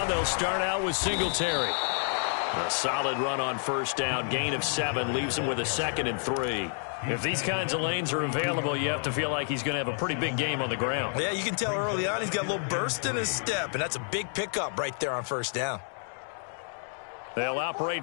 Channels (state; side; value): silent; right; 58 dB below the other